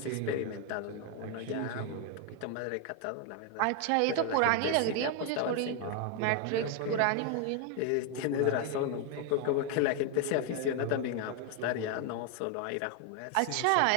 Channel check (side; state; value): both; different; correlation 0.00